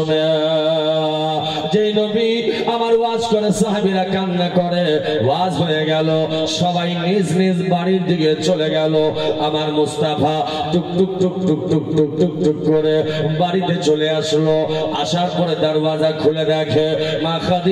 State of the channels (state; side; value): identical; both; correlation 1.00